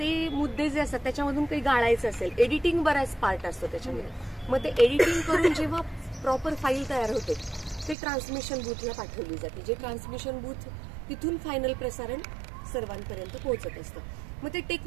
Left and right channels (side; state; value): left; drops out; at 8.0 s